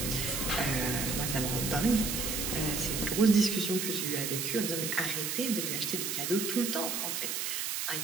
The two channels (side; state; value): right; noise; hiss, 1 dB below the sound